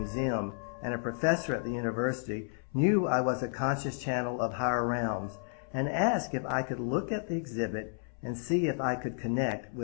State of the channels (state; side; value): silent; right; 56 dB below the other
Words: and a professor at the university, knew I was a conscious channel of higher realms and asked if I could look at the exhibit and see if I could connect